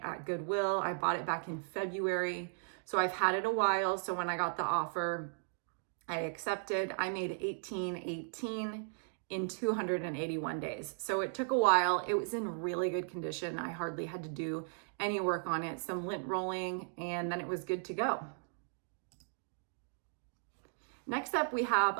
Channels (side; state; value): left; silent; digital silence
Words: at Goodwill. I bought it back in February, so I've had it a while. So when I got the offer, I accepted. I made $18.18 in 281 days. So it took a while. It was in really good condition. I hardly had to do any work on it, some lint rolling, and then it was good to go. Next up, we have